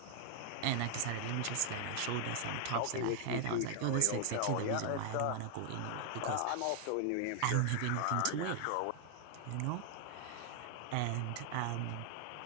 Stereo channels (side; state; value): both; different; correlation 0.00